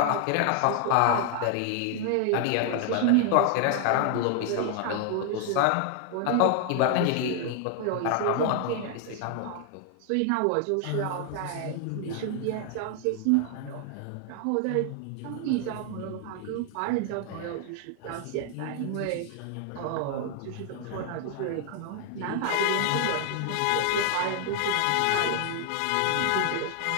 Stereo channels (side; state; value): both; different; correlation 0.00